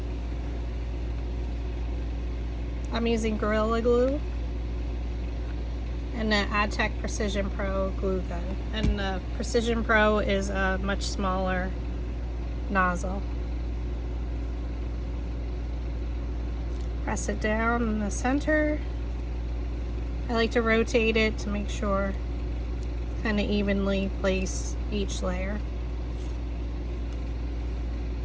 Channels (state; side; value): identical; both; correlation 1.00